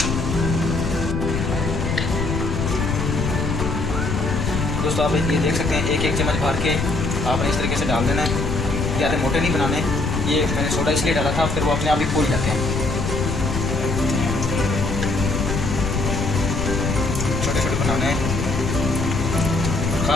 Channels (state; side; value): noise; left; rumble, 1 dB below the sound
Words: दोस्तों आप ये देख सकते हैं 1 चम्मच भर के आपने इस तरीके से डाल देना है, ज़्यादा मोटे नहीं बनाने। ये मैंने सोडा इसलिए डाला था, फिर वो अपने आप ही फूल जाते हैं। छोटे छोटे बनाने हैं,